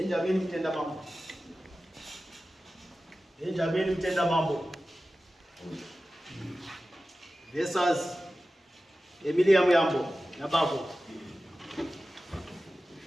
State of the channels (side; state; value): both; normal; correlation 0.95